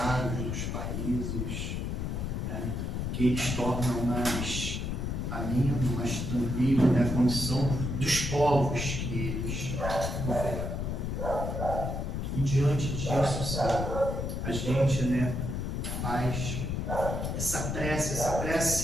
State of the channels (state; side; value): noise; left; rumble, 2 dB below the sound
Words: dos países, né, que eles tornam mais ameno, mais tranquilo, né, a condição dos povos que eles governam. E diante disso, sabe, a gente, né, faz essa